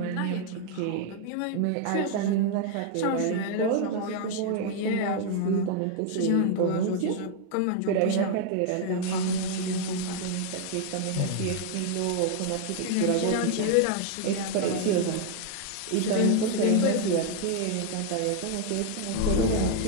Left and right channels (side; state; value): both; different; correlation 0.00